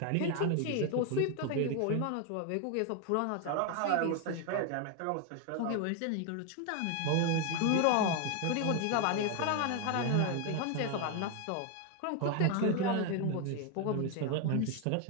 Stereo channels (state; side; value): different; both; correlation 0.01